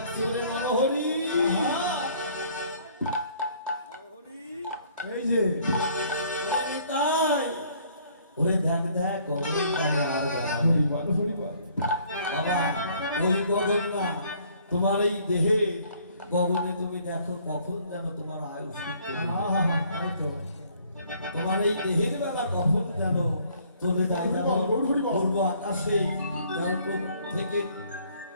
ওরে নরহরি এই যে ওরে নিতাই ওরে দেখ দেখ গগন কালে আর বেলা নেই। হরিবল হরিবল বাবা ওই গগন না তোমার এই দেহে গগনে তুমি দেখো কখন যেন তোমার আয়ুষ তাই তো তোমার এই দেহের বেলা কখন যেন চলে যায় যেমন গৌর হরি বল। পূর্ব আকাশে যেমন পূব থেকে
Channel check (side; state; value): both; inverted; correlation -0.61